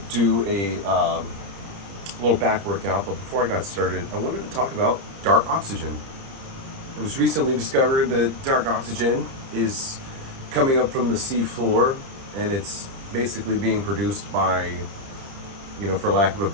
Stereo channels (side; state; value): left; late; 30 ms